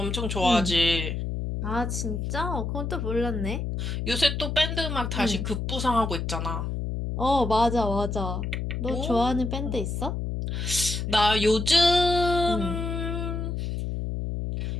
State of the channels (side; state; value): left; noise; hum, 3 dB below the sound